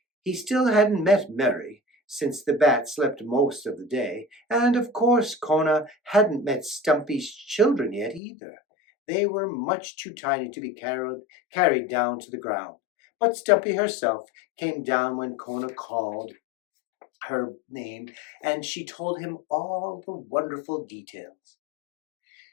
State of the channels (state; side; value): drops out; right; at 8.2 s